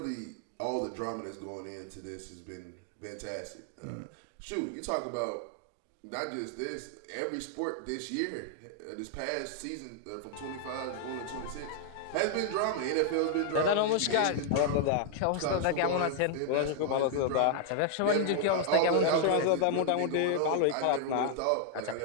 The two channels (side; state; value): both; different; correlation 0.00